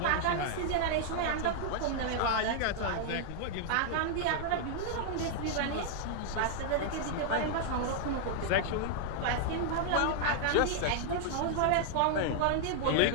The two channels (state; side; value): different; both; correlation -0.01